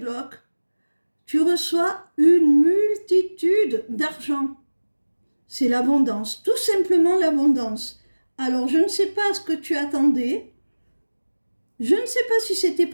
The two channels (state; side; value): inverted; both; correlation -1.00